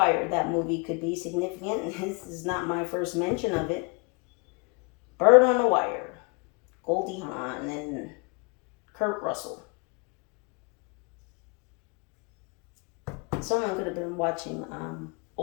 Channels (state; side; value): quieter; right; 32.4 dB